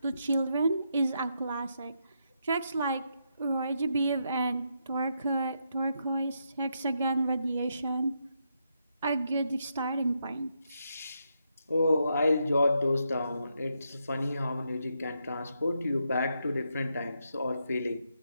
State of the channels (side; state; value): both; inverted; correlation -0.81